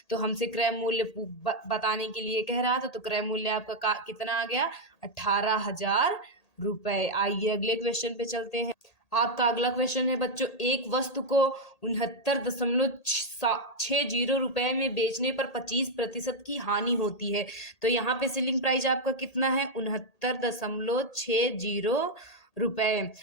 तो हमसे क्रय मूल्य बताने के लिए कह रहा था, तो क्रय मूल्य आपका कितना आ गया 18,000 रुपए। आइए अगले क्वेश्चन पे चलते हैं। आपका अगला क्वेश्चन है बच्चों, एक वस्तु को 69.60 रुपए में बेचने पर 25% की हानि होती है। तो यहाँ पे सेलिंग प्राइस आपका कितना है 69.60 रुपए,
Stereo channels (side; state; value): right; late; 1.8 ms